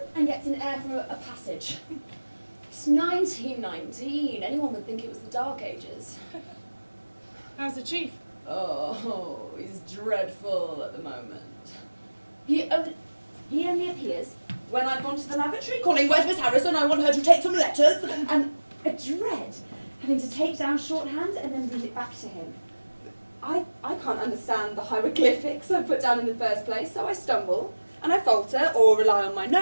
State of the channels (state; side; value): inverted; both; correlation -1.00